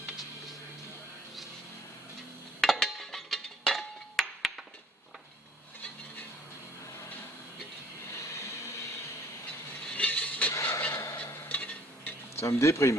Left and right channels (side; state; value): both; normal; correlation 0.57